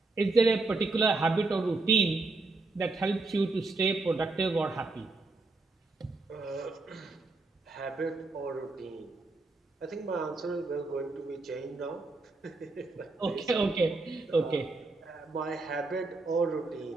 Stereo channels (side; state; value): left; quieter; 3.4 dB